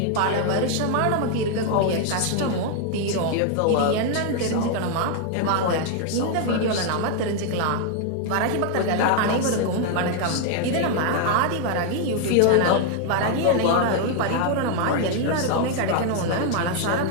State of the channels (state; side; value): different; both; correlation 0.00